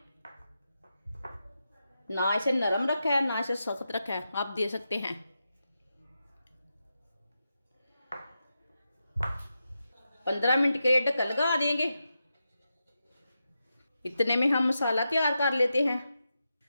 ना इसे नरम रखा है ना इसे सख्त रखा है, आप दे सकते हैं। 15 मिनट के लिए ढक्कन लगा देंगे। इतने में हम मसाला तैयार कर लेते हैं।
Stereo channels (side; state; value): both; inverted; correlation -0.88